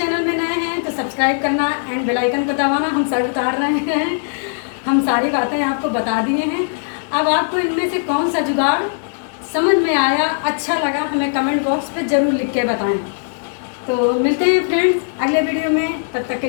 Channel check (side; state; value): right; silent; digital silence